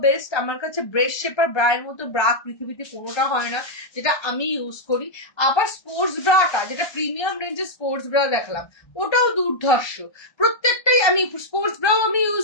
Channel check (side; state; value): right; late; 1.2 ms